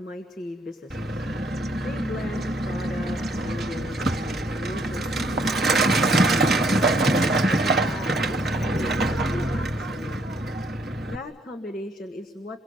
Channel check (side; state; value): both; normal; correlation 0.67